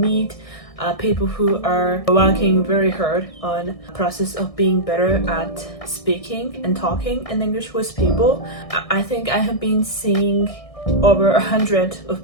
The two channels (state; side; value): late; right; 1.6 ms